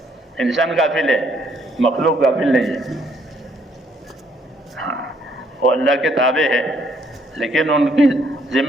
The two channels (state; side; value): normal; both; correlation 0.68